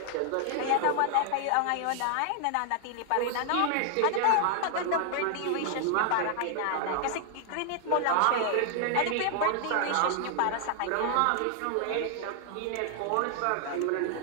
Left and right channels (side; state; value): both; different; correlation 0.00